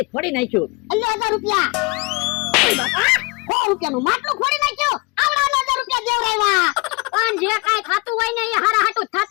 ફોડી નાખ્યું. અલ્લે 1000 રૂપિયા. ઓય બાપા 100 રૂપિયાનું માટલું ફોડી નાખ્યું. આવડા 1000 રૂપિયા દેવરાવ્યા. પણ જે કાઈ થાતું હોય ને એ હારા હાટું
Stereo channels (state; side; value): quieter; right; 28.3 dB